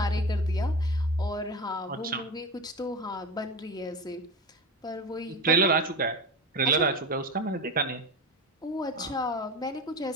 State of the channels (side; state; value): both; normal; correlation 0.24